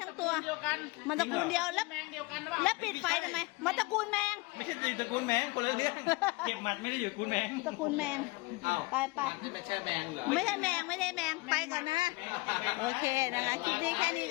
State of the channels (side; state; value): right; quieter; 24.2 dB